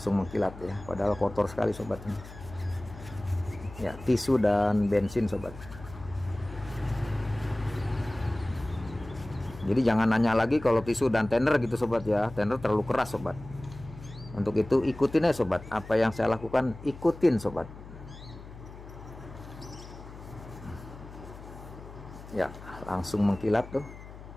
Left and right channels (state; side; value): noise; left; hum, 15 dB below the sound